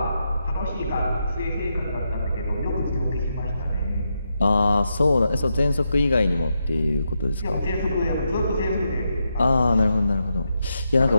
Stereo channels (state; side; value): inverted; both; correlation -0.84